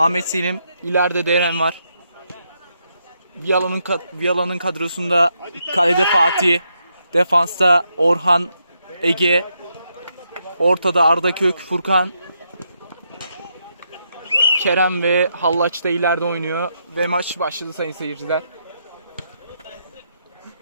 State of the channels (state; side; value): inverted; both; correlation -0.79